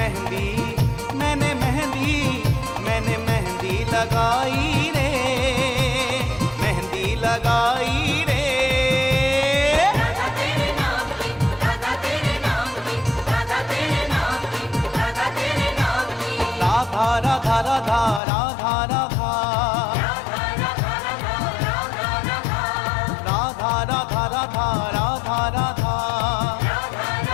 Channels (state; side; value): drops out; right; at 18.2 s